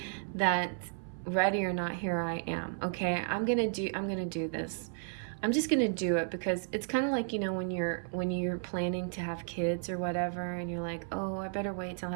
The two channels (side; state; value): left; silent; 56 dB below the other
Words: that ready or not, here I am. Okay, I'm gonna do this. I'm just gonna do it, because it's kind of like, you know, when you're planning to have kids or whatever, and you're like, oh, I better wait till I